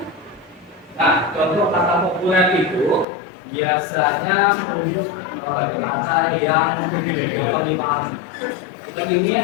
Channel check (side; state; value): right; drops out; at 3.1 s